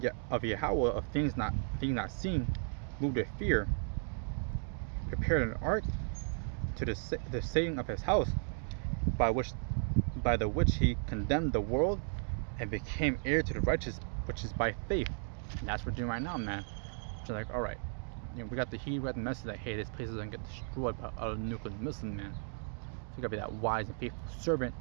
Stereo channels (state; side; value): silent; left; 54 dB below the other